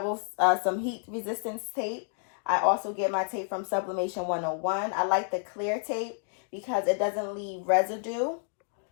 heat resistance tape. I also get my tape from Sublimation 101. I like the clear tape because it doesn't leave residue.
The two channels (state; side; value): silent; right; 58 dB below the other